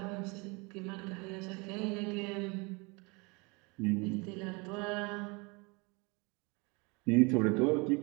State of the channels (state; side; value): quieter; left; 28.6 dB